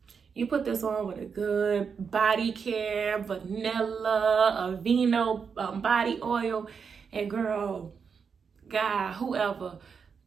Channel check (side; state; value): left; quieter; 6.1 dB